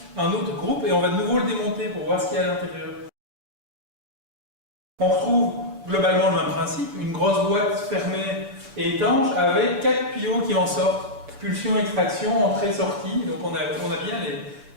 un autre groupe, et on va de nouveau le démonter pour voir ce qu'il y a à l'intérieur. On retrouve globalement le même principe, une grosse boîte fermée et étanche avec 4 tuyaux qui en sortent. Pulsion, extraction, entrée, sortie. Donc on a bien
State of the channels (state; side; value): late; left; 7.0 ms